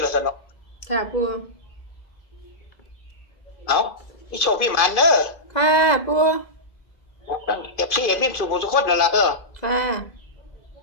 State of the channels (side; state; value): right; late; 2.0 ms